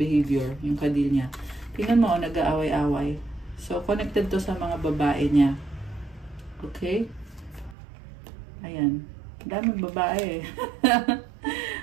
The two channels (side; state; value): left; drops out; at 7.8 s